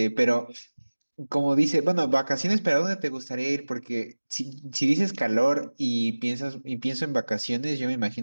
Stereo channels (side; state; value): both; inverted; correlation -1.00